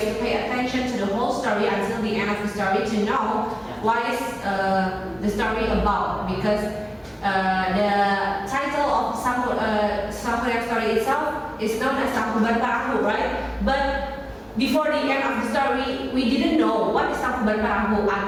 to pay attention to the whole story until the end of the story to know what is the story about, because the title of Sang Priang story itself is known as Tangkuban Parahu, right? But before the end of the story, we didn't know what is Tangkuban Parahu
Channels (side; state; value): both; identical; correlation 1.00